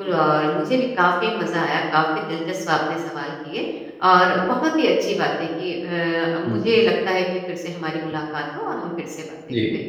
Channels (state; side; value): identical; both; correlation 1.00